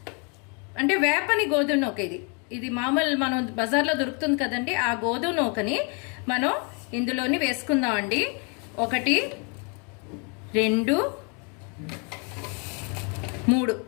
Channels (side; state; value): right; quieter; 34.8 dB